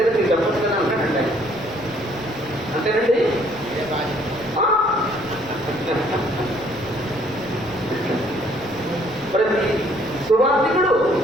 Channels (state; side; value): noise; right; rumble, 19 dB below the sound